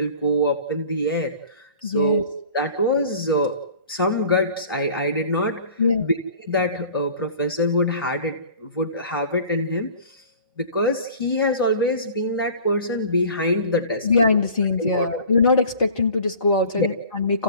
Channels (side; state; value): both; inverted; correlation -0.45